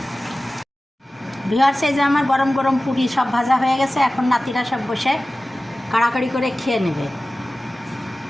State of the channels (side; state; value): both; normal; correlation 0.96